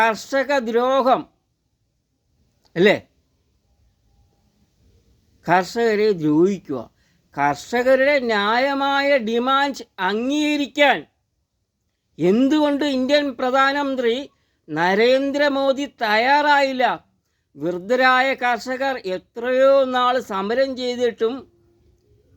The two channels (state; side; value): identical; both; correlation 1.00